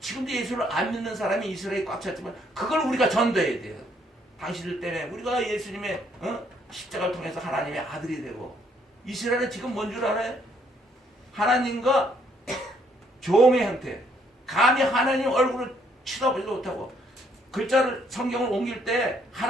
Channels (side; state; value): both; normal; correlation 0.68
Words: 예수를 안 믿는 사람이 이스라엘에 꽉 찼지만 그걸 우리가 전도해야 돼요. 당신들 때문에 우리가 예수님의 십자가를 통해서 하나님의 아들이 되고, 이스라엘은 지금 뭔 줄 알아요? 하나님과 종의 형태, 감히 하나님 얼굴을 쳐다보지도 못하고, 글자를 성경을 옮길 때